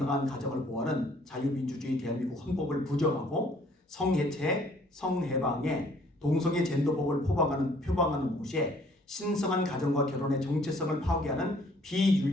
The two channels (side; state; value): both; normal; correlation 0.60